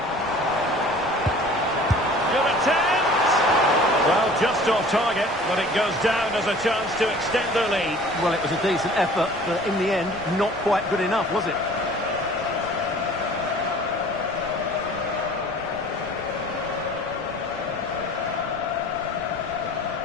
Good attempt! Well, just off target, but it goes down as a chance to extend their lead. Well, it was a decent effort, but in the end, not quite good enough, was it?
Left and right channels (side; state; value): right; noise; rumble, 18 dB below the sound